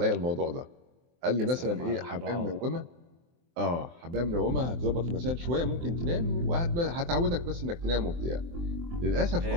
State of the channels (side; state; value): left; late; 23 ms